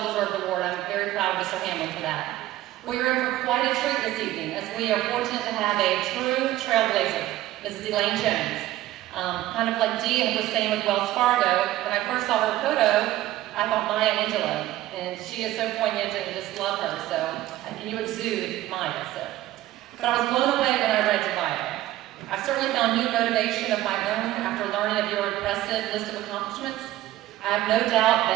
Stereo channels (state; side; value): quieter; left; 15.1 dB